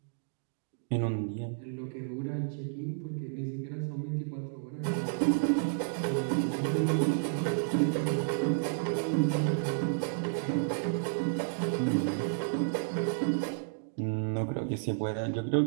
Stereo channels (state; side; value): silent; left; digital silence